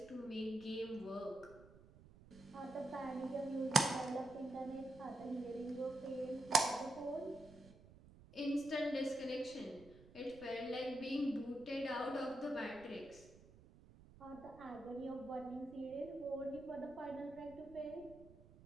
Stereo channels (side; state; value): right; noise; rumble, 21 dB below the sound